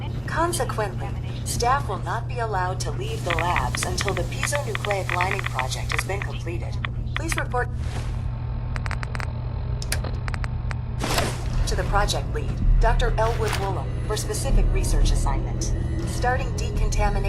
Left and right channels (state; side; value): identical; both; correlation 1.00